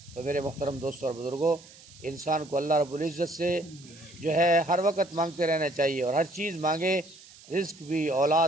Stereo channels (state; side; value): noise; right; hiss, 21 dB below the sound